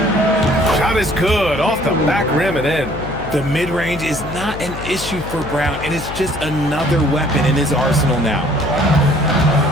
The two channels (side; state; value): left; noise; hum, 11 dB below the sound